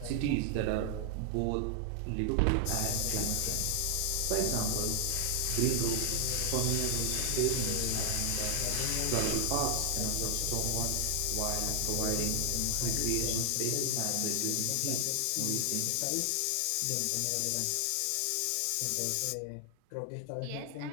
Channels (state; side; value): different; both; correlation 0.00